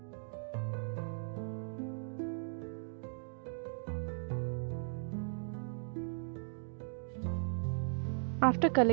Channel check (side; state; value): left; silent; digital silence